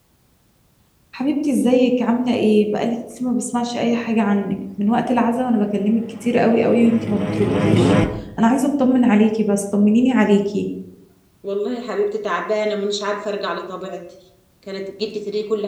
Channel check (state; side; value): identical; both; correlation 1.00